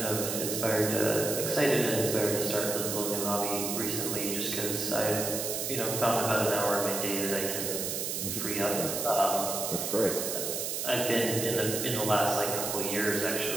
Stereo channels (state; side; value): noise; right; hiss, 2 dB below the sound